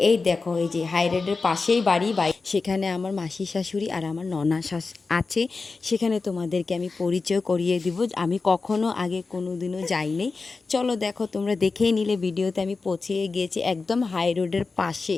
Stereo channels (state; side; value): quieter; right; 4.1 dB